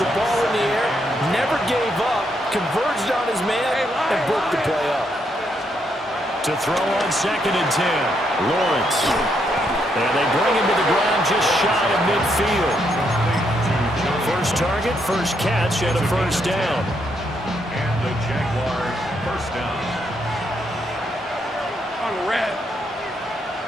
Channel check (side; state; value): both; normal; correlation 0.77